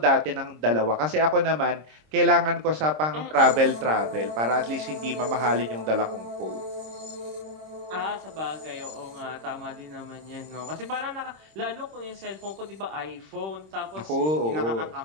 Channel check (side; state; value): left; late; 26 ms